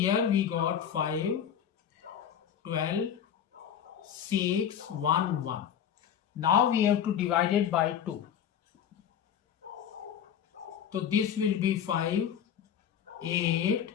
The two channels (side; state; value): right; quieter; 8.9 dB